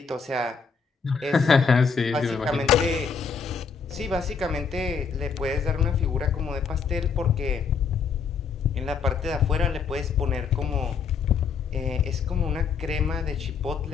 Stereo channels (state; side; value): quieter; right; 5.7 dB